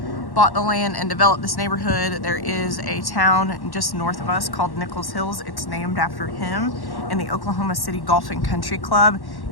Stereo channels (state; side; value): late; right; 1.1 ms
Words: bought the land and developed this neighborhood, there is a town just north of us called Nichols Hills. It's named after him, and the Oklahoma City Golf and Country Club